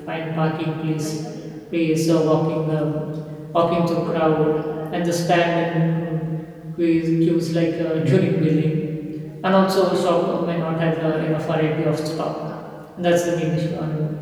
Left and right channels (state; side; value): identical; both; correlation 1.00